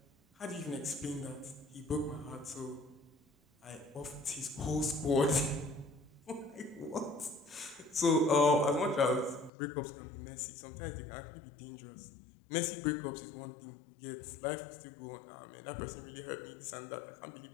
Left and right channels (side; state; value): right; drops out; at 9.5 s